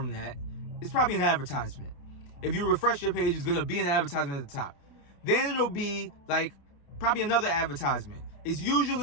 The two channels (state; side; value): late; right; 28 ms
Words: that, it's probably an advertisement. If you refresh your page, it's going to be an advertisement at the top. Then it'll be like probably another advertisement. It's